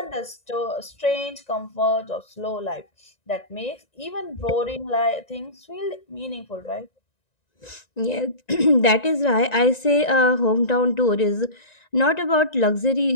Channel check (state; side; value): late; right; 1.9 ms